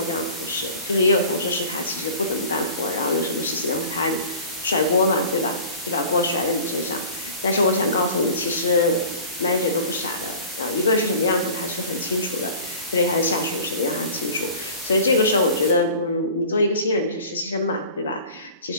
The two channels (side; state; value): both; inverted; correlation -0.42